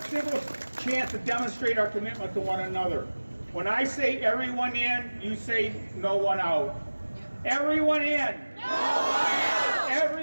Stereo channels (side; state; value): both; inverted; correlation -1.00